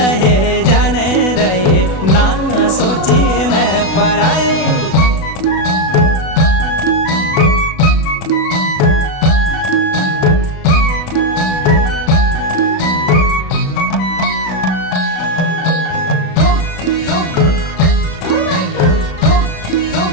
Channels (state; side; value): late; right; 37 ms